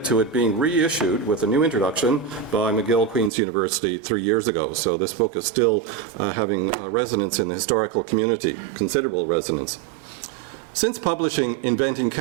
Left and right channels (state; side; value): drops out; left; at 3.3 s